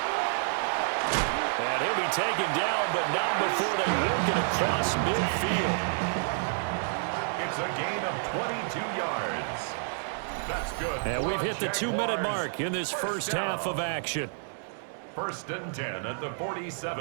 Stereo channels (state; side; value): silent; left; digital silence